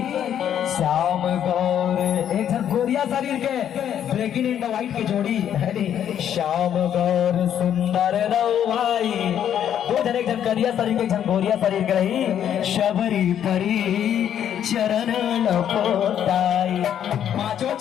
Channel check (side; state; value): right; quieter; 9.7 dB